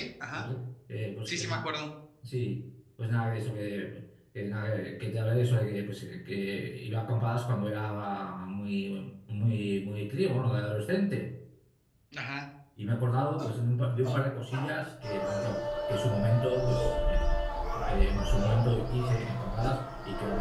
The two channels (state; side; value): identical; both; correlation 1.00